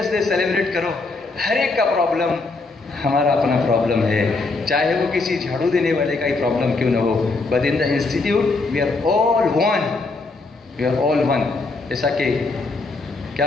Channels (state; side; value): quieter; right; 3.6 dB